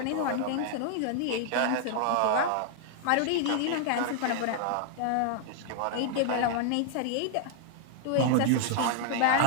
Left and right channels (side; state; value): both; different; correlation 0.00